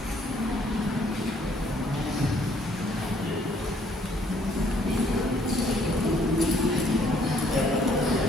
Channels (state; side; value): normal; both; correlation 0.64